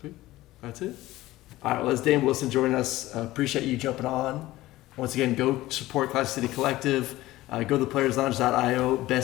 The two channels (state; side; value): quieter; right; 17.0 dB